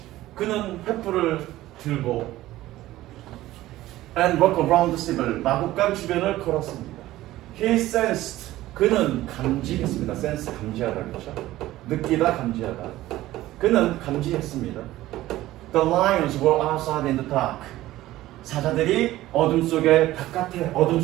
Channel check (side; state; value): left; quieter; 15.8 dB